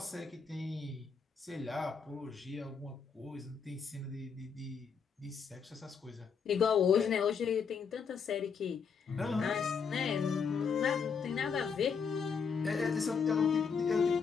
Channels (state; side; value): quieter; right; 6.1 dB